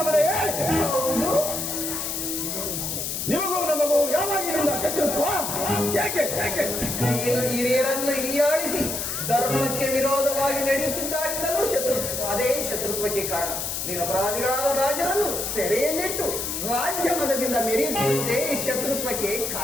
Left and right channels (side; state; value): left; noise; hiss, 3 dB below the sound